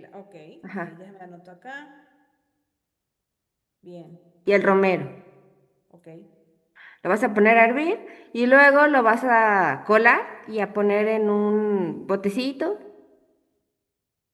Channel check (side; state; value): both; identical; correlation 1.00